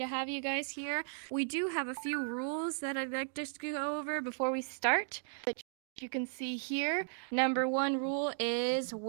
have you guys here. We do have a few rules that I'd like to go over before we start that you can see here. Number 1 rule is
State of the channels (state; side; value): silent; left; digital silence